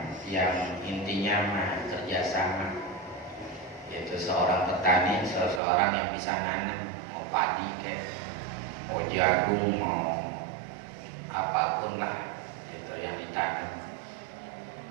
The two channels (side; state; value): left; drops out; at 5.6 s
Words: yang intinya mah kerjasama, yaitu seorang petani, seseorang yang bisa nanam, mau padi kayak, mau jagung, mau apapun lah itu yang ditanam.